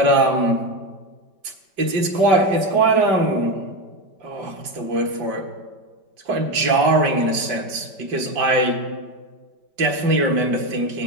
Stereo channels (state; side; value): late; left; 5.1 ms